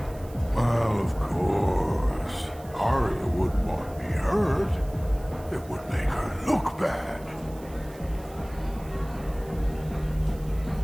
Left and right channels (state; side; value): noise; right; hiss, 23 dB below the sound